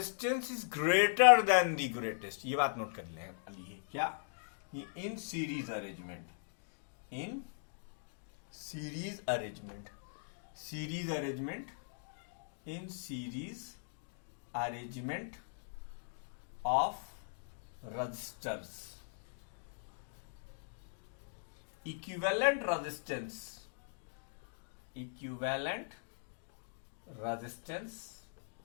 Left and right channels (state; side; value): silent; right; digital silence